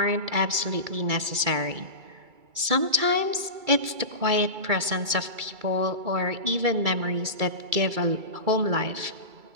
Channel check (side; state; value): left; late; 2.3 ms